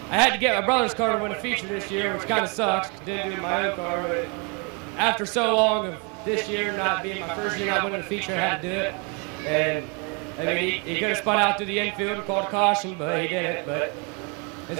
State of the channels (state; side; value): quieter; left; 33.7 dB